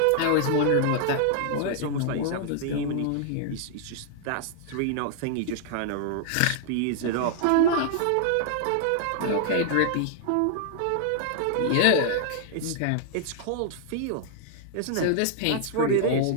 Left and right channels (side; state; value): both; different; correlation -0.01